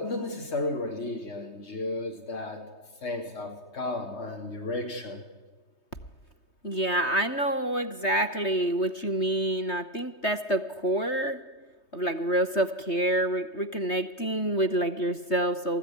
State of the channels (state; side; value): late; right; 3.2 ms